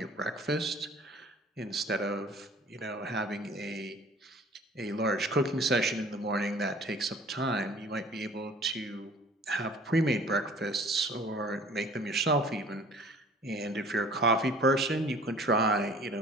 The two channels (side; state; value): both; normal; correlation 0.49